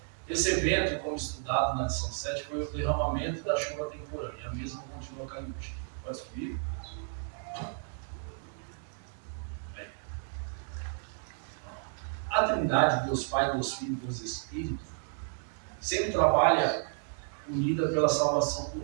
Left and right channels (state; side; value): silent; left; 56 dB below the other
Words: Esse evento, como estudado na lição 7, foi o derramamento da chuva temporânea. A mesma continua caindo hoje. Pode subir? A Trindade, Deus Pai, Deus Filho e Deus Espírito, sempre trabalha unida pela salvação